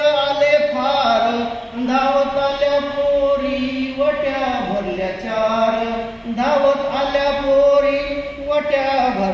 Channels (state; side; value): identical; both; correlation 1.00